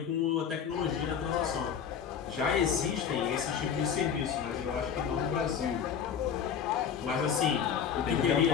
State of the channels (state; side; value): quieter; right; 7.6 dB